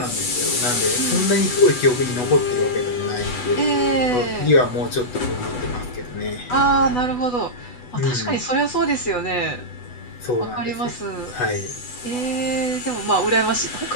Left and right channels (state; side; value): late; right; 8.1 ms